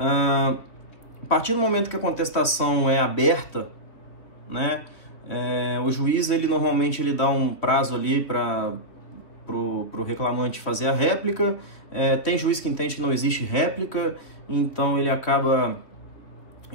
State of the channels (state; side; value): late; right; 2.9 ms